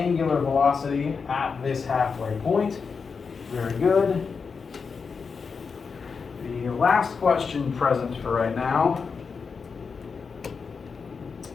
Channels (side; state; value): right; quieter; 5.3 dB